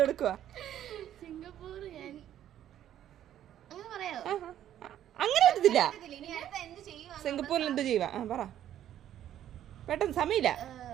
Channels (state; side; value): quieter; left; 11.3 dB